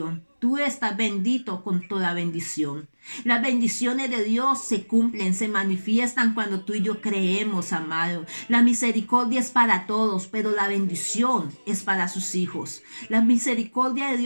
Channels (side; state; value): both; inverted; correlation -1.00